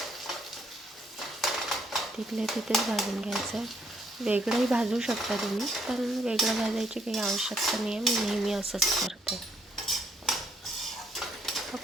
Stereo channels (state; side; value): normal; both; correlation 0.70